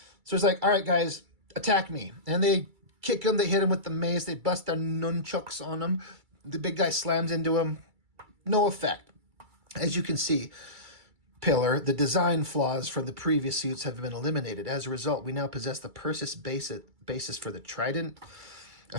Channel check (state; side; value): late; left; 2.3 ms